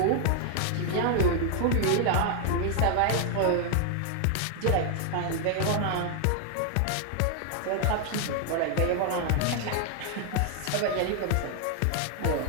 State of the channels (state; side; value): different; both; correlation 0.00